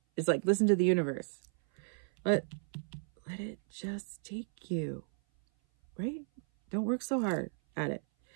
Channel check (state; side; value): silent; left; 55 dB below the other